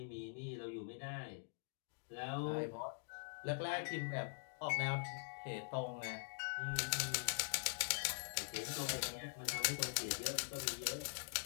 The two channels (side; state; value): right; silent; digital silence